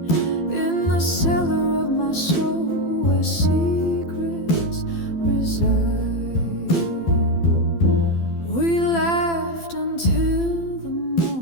in the cellar of my soul where secrets reside. We laughed until the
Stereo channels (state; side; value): late; right; 12 ms